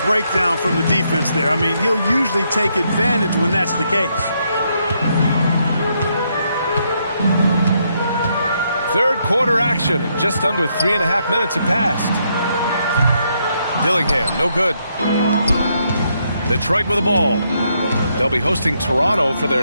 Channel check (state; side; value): inverted; both; correlation -0.76